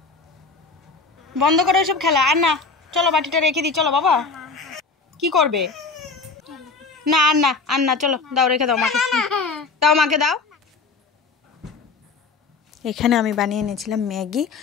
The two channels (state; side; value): quieter; right; 4.3 dB